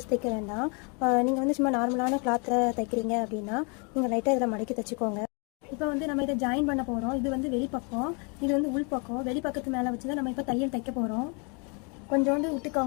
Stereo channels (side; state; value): right; quieter; 34.9 dB